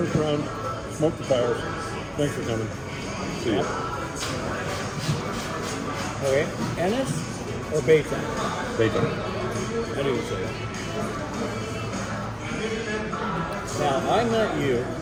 round, smoked the fires. Thanks for coming. See ya. Okay. Ennis or Baytown? Bacon. I knew you'd say that. Now, I met you, I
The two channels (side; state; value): both; identical; correlation 1.00